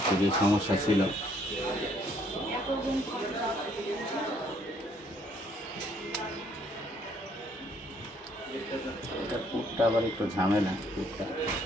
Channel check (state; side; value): normal; both; correlation 0.66